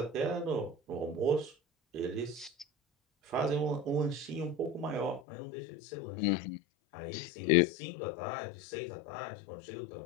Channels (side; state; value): right; drops out; at 5.2 s